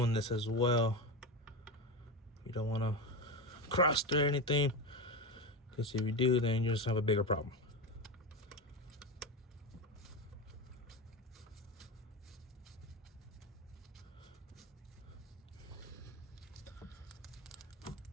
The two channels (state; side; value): normal; both; correlation 0.18